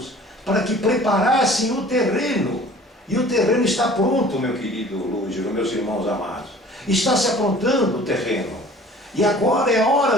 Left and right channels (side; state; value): both; normal; correlation 0.48